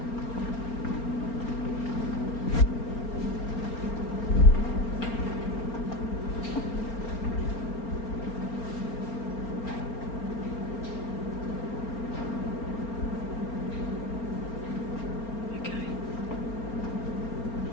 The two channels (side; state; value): right; late; 4.3 ms